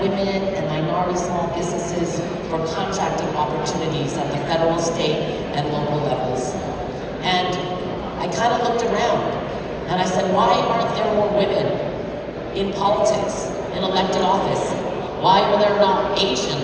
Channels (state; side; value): identical; both; correlation 1.00